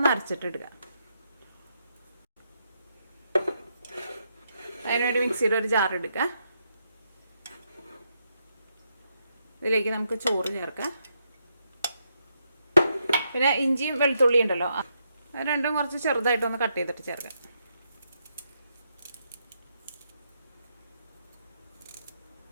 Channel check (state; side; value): inverted; both; correlation -0.79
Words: അരച്ചിട്ടെടുക്കാം. അതിനുവേണ്ടി മിക്സിയുടെ ഒരു ജാർ എടുക്കുക. ഇതിലേക്ക് നമുക്ക് ചോറ് ചേർക്കാം. പിന്നെ ഇഞ്ചിയും വെളുത്തുള്ളിയും ഉണ്ടല്ലോ, അത് രണ്ടും കുറച്ച് ചെറുതായിട്ടൊന്ന് കട്ട് ചെയ്തിട്ട് ചേർക്കാം.